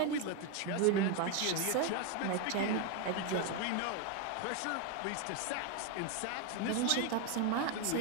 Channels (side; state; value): both; different; correlation 0.01